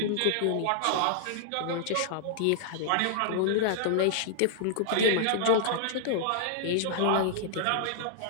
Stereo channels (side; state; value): both; different; correlation -0.01